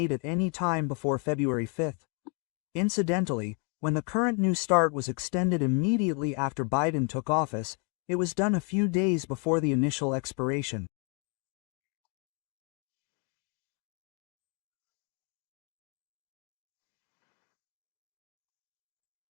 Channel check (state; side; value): quieter; right; 37.3 dB